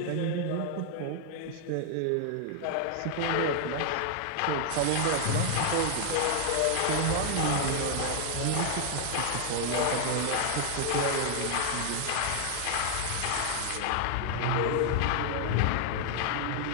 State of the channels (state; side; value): different; both; correlation 0.00